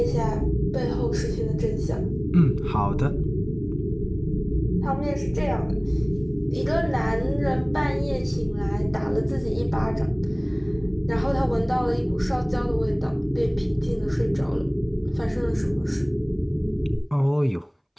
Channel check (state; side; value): identical; both; correlation 1.00